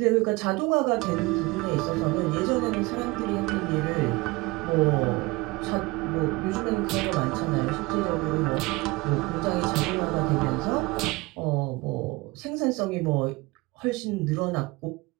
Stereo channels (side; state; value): left; quieter; 22.9 dB